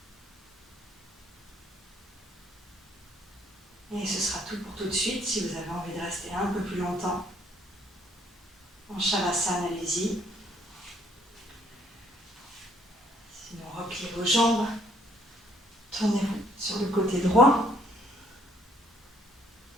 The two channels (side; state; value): both; normal; correlation 0.65